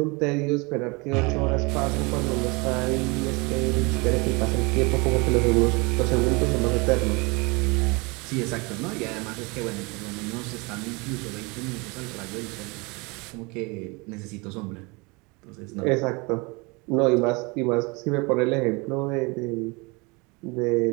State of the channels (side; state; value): left; quieter; 27.6 dB